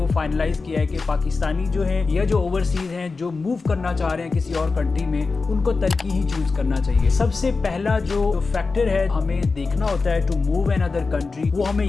फाइनलाइज किया है कि पाकिस्तानी जो है या जो ओवरसीज हैं जो मूव करना चाह रहे हैं किसी और कंट्री में, उनको तुर्की ही चूज करना चाहिए। सबसे पहला जो फैक्टर है हमें देखना होता है to move another country, वो हमें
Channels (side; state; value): right; quieter; 4.2 dB